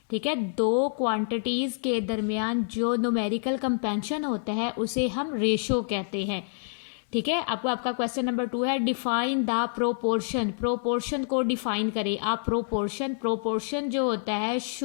ठीक है, दो क्वांटिटीज के दरमियान जो न्यूमेरिकल कंपेंशन होता है उसे हम रेशो कहते हैं। ठीक है, आपको आपका क्वेश्चन नंबर 2 है डिफाइन द प्रोपोर्शन। प्रोपोर्शन को डिफाइन करें आप। प्रोपोर्शन जो होता है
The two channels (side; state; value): right; silent; 60 dB below the other